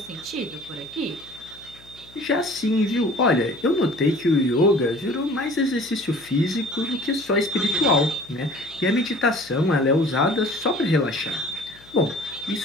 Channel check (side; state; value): left; noise; hum, 25 dB below the sound